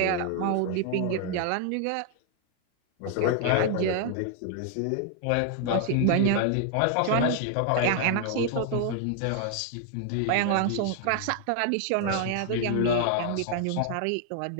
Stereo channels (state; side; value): different; both; correlation 0.00